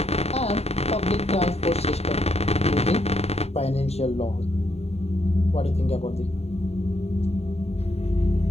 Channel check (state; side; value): late; right; 0.30 ms